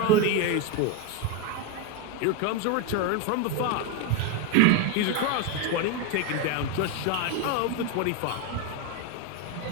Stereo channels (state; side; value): different; both; correlation 0.02